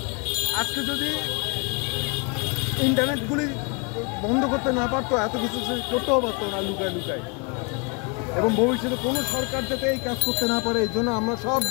আজকে যদি ইন্টারনেটগুলি বন্ধ করতে না পারতো, এত কিছু করতেও পারতো না লুকায় লুকায়। এবং ভবিষ্যতে কোনো সরকার যাতে এই কাজ করতে না পারে, এই জন্য আমরা সব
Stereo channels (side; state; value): right; quieter; 32.1 dB